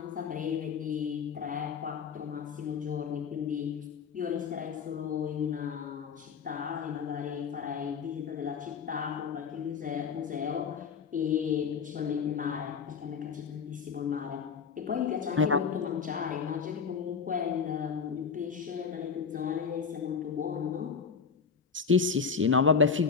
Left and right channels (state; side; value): quieter; right; 6.1 dB